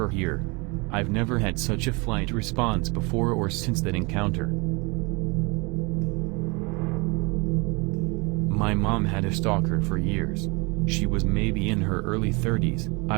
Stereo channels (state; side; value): quieter; left; 28.4 dB